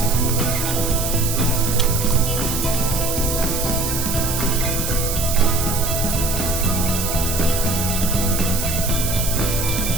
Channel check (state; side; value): noise; right; hiss, 3 dB below the sound